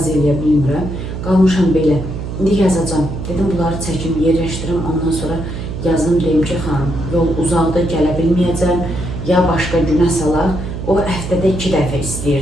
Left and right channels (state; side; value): noise; right; hum, 6 dB below the sound